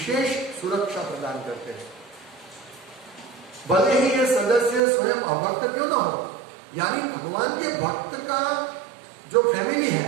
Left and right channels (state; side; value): drops out; left; at 4.8 s